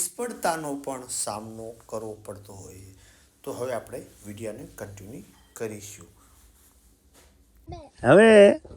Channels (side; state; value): both; identical; correlation 1.00